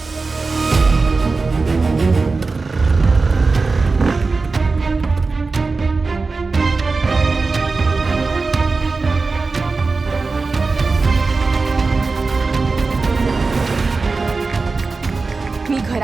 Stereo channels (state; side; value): quieter; left; 4.0 dB